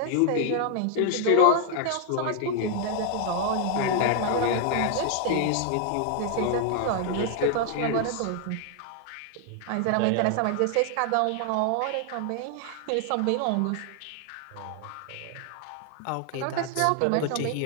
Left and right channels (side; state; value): both; different; correlation 0.00